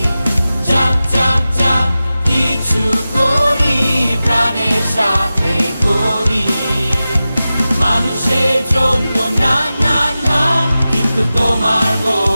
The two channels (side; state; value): both; inverted; correlation -0.94